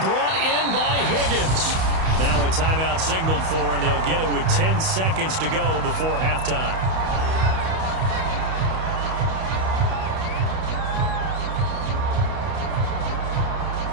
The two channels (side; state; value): left; late; 31 ms